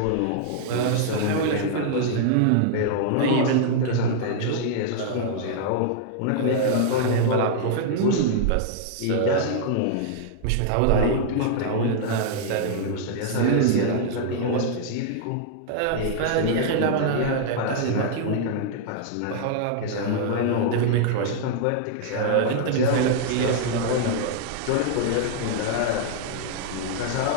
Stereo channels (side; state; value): both; different; correlation -0.01